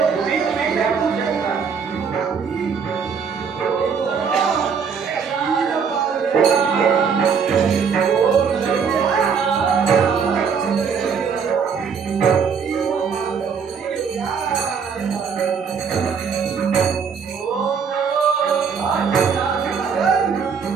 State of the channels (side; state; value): left; quieter; 6.2 dB